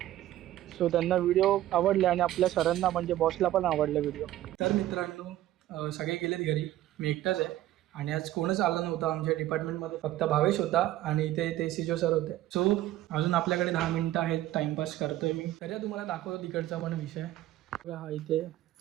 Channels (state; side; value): quieter; left; 14.2 dB